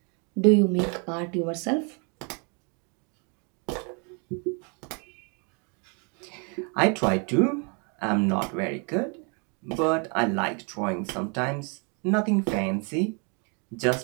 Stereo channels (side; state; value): left; quieter; 35.4 dB